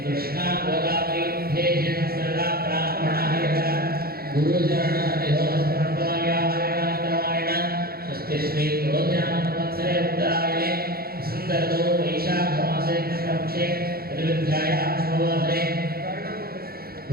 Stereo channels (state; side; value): late; left; 0.44 ms